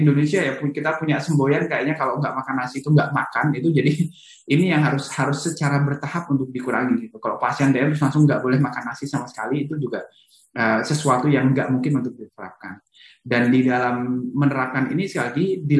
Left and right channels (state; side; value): identical; both; correlation 1.00